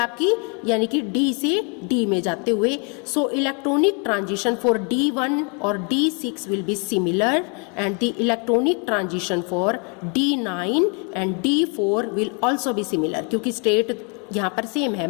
यानी कि D से D में जाते हुए. So electronic transition for D1 और D6 will be similar and the electronic transition for D9 and D4 will also be similar, क्योंकि स्टेट यहाँ पर सेम है,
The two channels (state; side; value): quieter; right; 36.1 dB